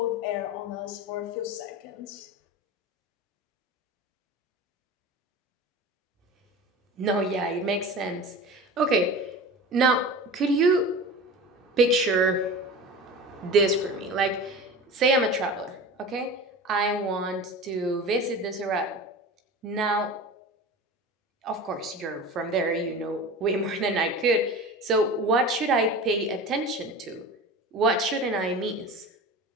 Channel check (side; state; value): both; normal; correlation 0.33